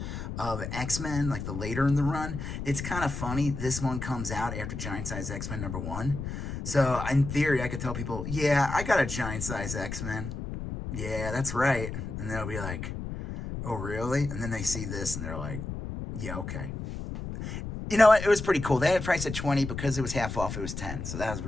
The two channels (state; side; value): noise; left; rumble, 6 dB below the sound